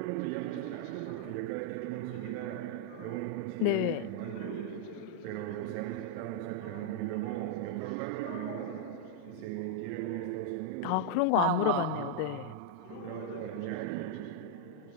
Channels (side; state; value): both; different; correlation -0.01